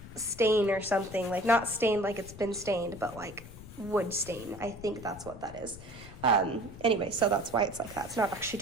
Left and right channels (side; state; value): left; noise; rumble, 15 dB below the sound